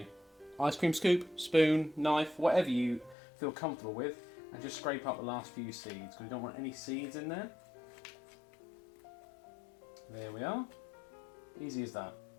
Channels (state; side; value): drops out; right; at 3.2 s